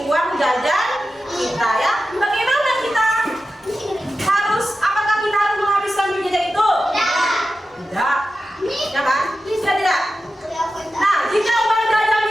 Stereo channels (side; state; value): both; normal; correlation 0.92